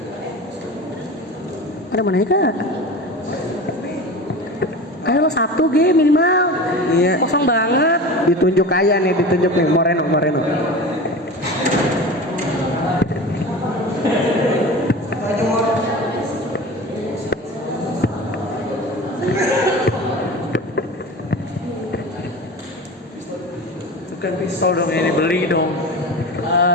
Ada mana ya kak? Ayo lo 1 G minimal. Iya. Kosong banget. Ditunjuk nih Moreno. Bukan pistol dong ini, beli dong.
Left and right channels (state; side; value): normal; both; correlation 0.32